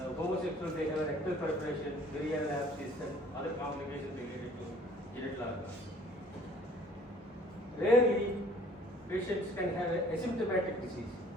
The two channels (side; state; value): both; normal; correlation 0.54